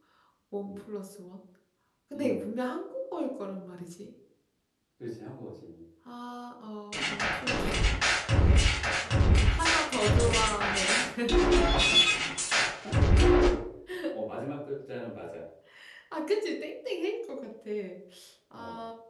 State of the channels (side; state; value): both; identical; correlation 1.00